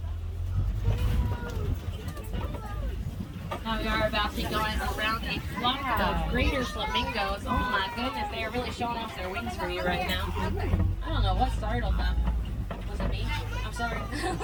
Now we are about to be going around a flock of greater flamingos. Oh my goodness, they are really showing off their wings for you right now. I don't know what startled them. Was it me? I'm sorry.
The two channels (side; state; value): both; identical; correlation 1.00